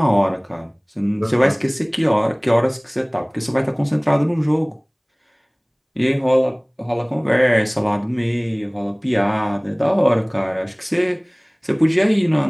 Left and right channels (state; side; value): identical; both; correlation 1.00